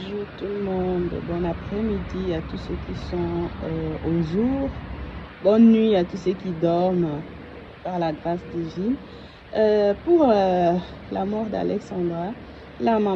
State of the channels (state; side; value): identical; both; correlation 1.00